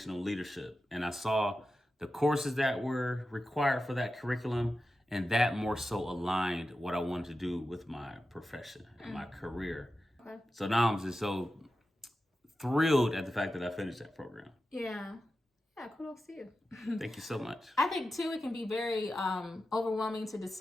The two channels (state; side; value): normal; both; correlation 0.92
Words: leadership. And I saw the courses that were required for that curriculum. And that more so aligned what I wanted to do with my profession and my career. Okay. So now I'm just so thrilled at the fact that I finished that program. Yeah. Yeah, kudos to you. Thank you so much. I think too, it can be very overwhelming to